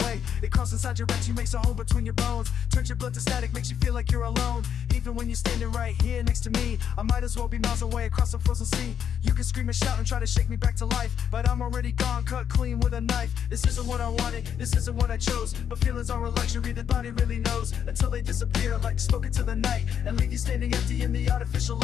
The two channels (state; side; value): quieter; right; 8.4 dB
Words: It crawls inside your rectum, makes a hole between your bones, turns your blood to static, makes you feel like you're alone. Even when you're standing right here next to me, I might as well be miles away across the frozen sea. You can scream and shout and try to shake me back to life, but I'm already gone, cut clean with a knife. This isn't what I wanted, this isn't what I chose, but feelings are a luxury the body really knows, until they disappear like smoke into the night and leave you standing empty in the artificial